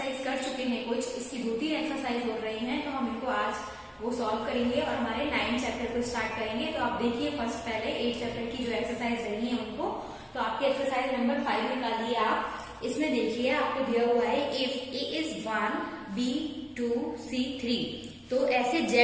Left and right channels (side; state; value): both; identical; correlation 1.00